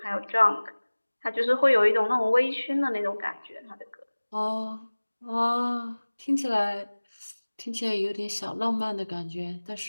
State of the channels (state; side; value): inverted; both; correlation -1.00